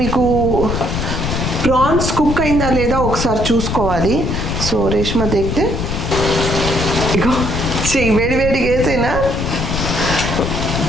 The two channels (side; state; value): left; noise; rumble, 2 dB below the sound